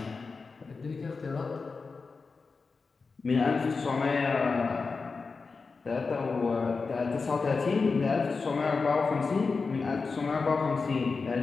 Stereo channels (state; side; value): quieter; right; 4.5 dB